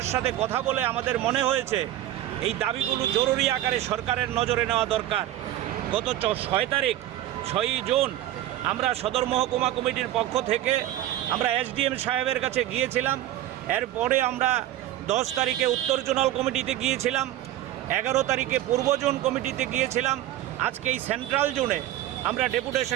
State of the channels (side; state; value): left; quieter; 13.6 dB